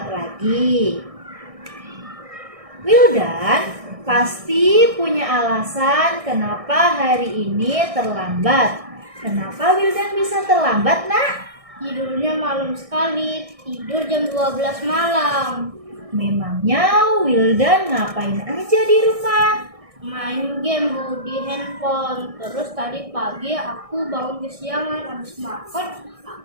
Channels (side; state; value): left; late; 1.6 ms